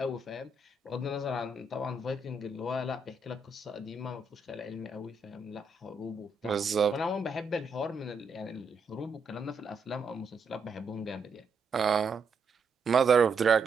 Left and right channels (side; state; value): left; quieter; 3.6 dB